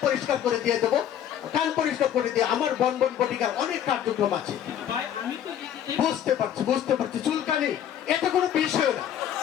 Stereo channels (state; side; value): quieter; right; 10.1 dB